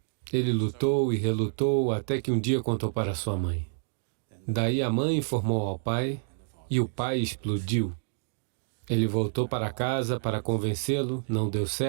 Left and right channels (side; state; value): left; silent; digital silence